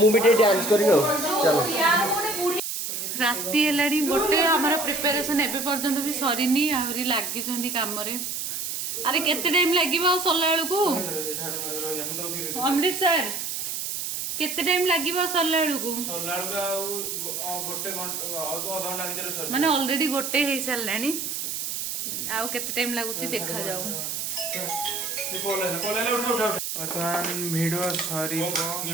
ବି ଟିକେ ଡ୍ୟାନ୍ସ କରିବି ଆଉ ଚାଲ ରାତି ହେଲାଣି ଗୋଟେ ଆମର ପ୍ରିପାରେସନ ଏବେ ପର୍ଯ୍ୟନ୍ତ ବି ସରିନି ଆହୁରି ଲାଗିଛନ୍ତି କାମରେ ଆରେ କେତେ ଟାଇମ ଲାଗିବ ଆଉ ସରିଲା ବେଳକୁ ଅମୃତ ସାର୍ କେତେ ଟାଇମ ଲାଗିବ ସରିଲା ବେଳକୁ ମାନେ ଅଲରେଡି ଗୋଟେ ହେଇସାରିଲାଣି ଆଉ କେତେ ଟାଇମ ଲାଗୁଛି ଦେଖାଯାଉ ବର୍ତ୍ତମାନ ଭିଡ଼ିଓ ସରିବ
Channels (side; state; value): right; noise; hiss, 3 dB below the sound